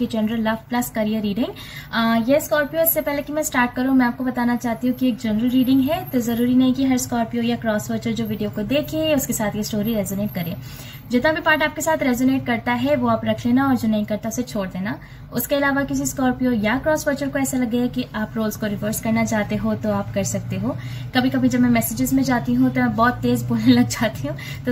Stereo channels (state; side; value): identical; both; correlation 1.00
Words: general love plus career reading. ये स्कॉर्पियो, इससे पहले कि मैं स्टार्ट करूं मैं आपको बताना चाहती हूँ कि एक जनरल रीडिंग है, तो जरूरी नहीं कि हर स्कॉर्पियो या क्रॉस वॉचर जो वीडियो को देखे उसके साथ ये स्टोरी रेजोनेट करे। जितना भी पार्ट आपके साथ रेजोनेट करता है वो आप रख लेना और जो नहीं करता उसे छोड़ देना। उसके अलावा किसी स्कॉर्पियो या क्रॉस वॉचर को ऐसा लगे कि आप रोल्स को रिवर्स करना चाहते हो तो आप कर सकते हो। कभी कभी जब मैं मैसेजेस में जाती हूँ तो मैं बहुत तेज बोलने लग जाती हूँ, तो